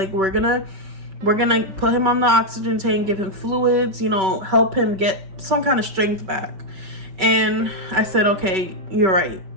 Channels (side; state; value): left; late; 5.3 ms